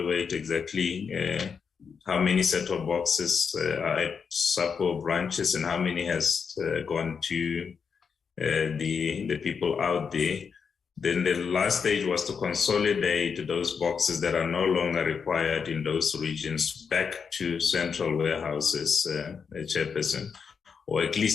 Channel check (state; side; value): quieter; right; 6.1 dB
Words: exactly how many set-top boxes are at SAPO branches and how many has gone to the people out there. Then the last stage was to consolidate those boxes that are no longer required in those regions back to central warehouses, Chairperson, or at